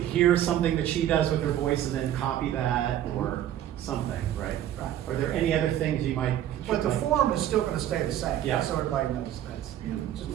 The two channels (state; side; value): quieter; left; 11.7 dB